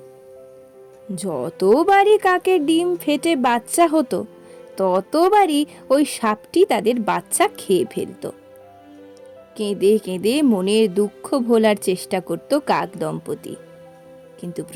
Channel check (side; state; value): both; identical; correlation 1.00